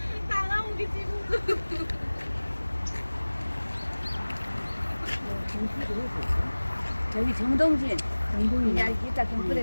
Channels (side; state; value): both; inverted; correlation -1.00